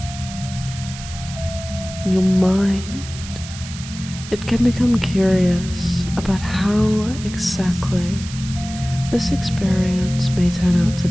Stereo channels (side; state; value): right; noise; hiss, 13 dB below the sound